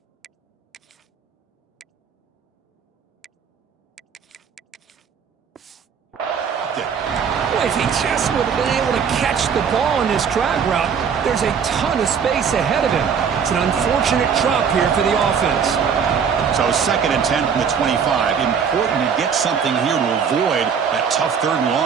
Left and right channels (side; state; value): left; quieter; 6.8 dB